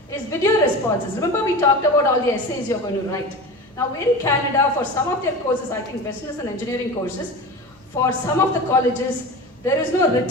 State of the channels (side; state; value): both; normal; correlation 0.31